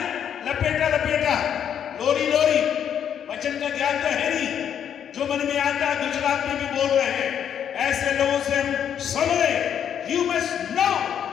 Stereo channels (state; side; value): quieter; right; 8.9 dB